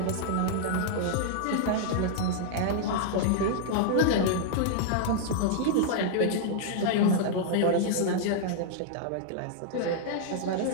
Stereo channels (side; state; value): both; different; correlation -0.01